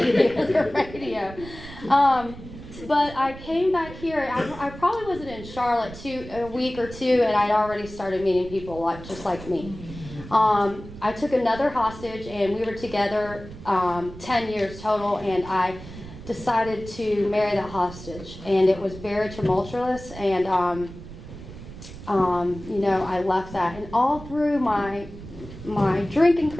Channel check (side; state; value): right; noise; rumble, 14 dB below the sound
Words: hear the radio. But I came back here. I probably wasn't in Charlotte a week or two, and I'd already started meeting people just like me. I took another hostage, and we were together 10 years total, and I decided to marry that hostage. And it was very tumultuous, and you know, I left that. And all through my drinking